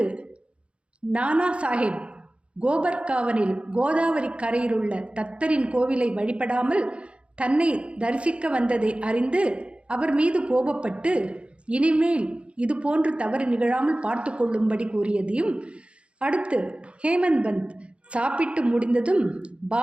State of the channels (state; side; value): late; left; 0.059 ms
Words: நானா சாஹேப் கோபர்காவனில் கோதாவரி கரையிலுள்ள தத்தரின் கோவிலை வழிபடாமல் தன்னை தரிசிக்க வந்ததை அறிந்து அவர் மீது கோபப்பட்டு இனிமேல் இது போன்று தவறு நிகழாமல் பார்த்து கொள்ளும்படி கூறியதையும், அடுத்து ஹேமந்த் பந்த் சாப்பிட்டு முடிந்ததும்